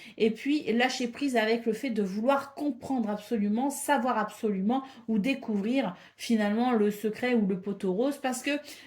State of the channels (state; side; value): identical; both; correlation 1.00